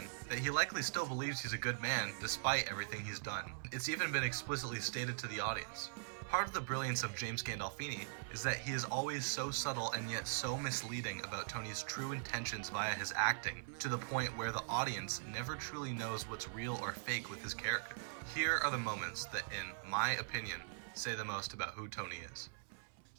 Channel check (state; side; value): silent; left; 50 dB below the other